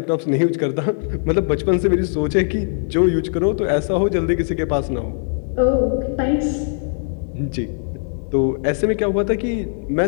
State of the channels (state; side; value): silent; right; digital silence